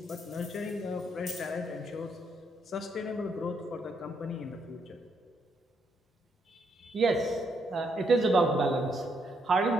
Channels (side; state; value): both; normal; correlation 0.75